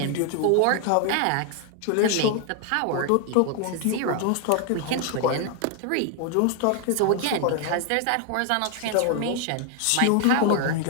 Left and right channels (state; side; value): different; both; correlation 0.00